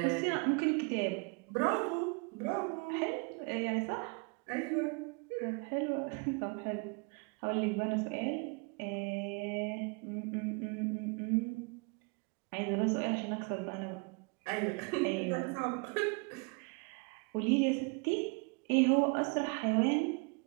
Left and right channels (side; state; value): left; quieter; 33.2 dB